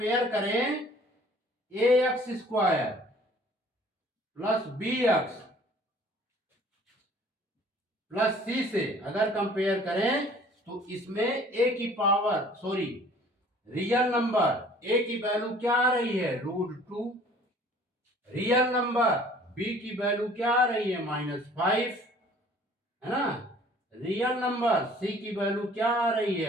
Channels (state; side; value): normal; both; correlation 0.53